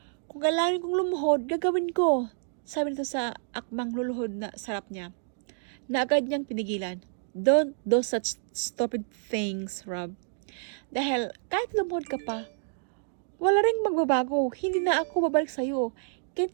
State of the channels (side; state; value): left; silent; digital silence